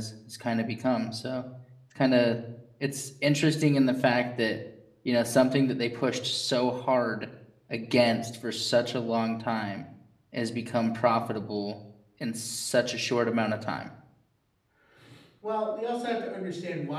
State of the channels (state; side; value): identical; both; correlation 1.00